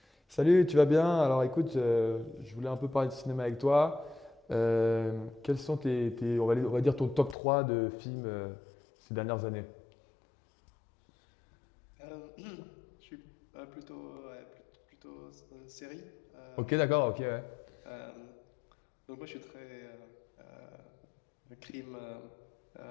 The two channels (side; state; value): right; drops out; at 7.4 s